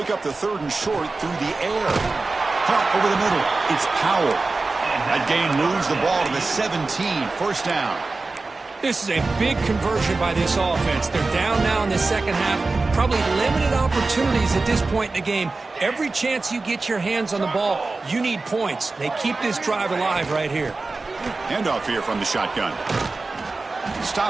up the 3rd and short through the air. Caught over the middle. It's Powell. That gain moves the ball to the 17. First down. This is a big conversion by this offense. They're down now in the second half. Probably limited opportunities at this point in the game. Every chance you get your hands on the ball, you need points. They keep this drive alive right here. Handoff here from the shotgun.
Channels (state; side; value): quieter; left; 3.6 dB